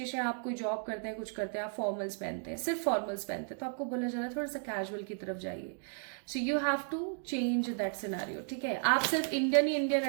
है, आप कोई जॉब करते हैं, कुछ करते हैं, आप फॉर्मल्स पहनते हैं, सिर्फ फॉर्मल्स पहनते हैं, तो आपको बोला जा रहा है थोड़ा सा कैजुअल की तरफ जाइए। So you have to change that scenario, ठीक है? आप सिर्फ इंडियन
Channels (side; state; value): left; silent; 55 dB below the other